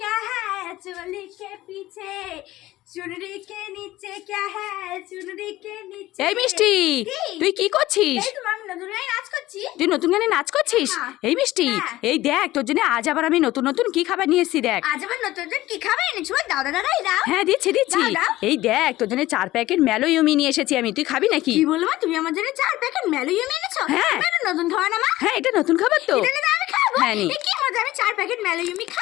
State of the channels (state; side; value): quieter; right; 16.6 dB